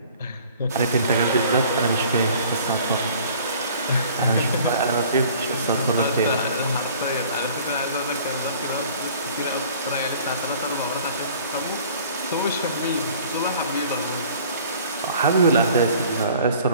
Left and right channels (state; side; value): inverted; both; correlation -0.51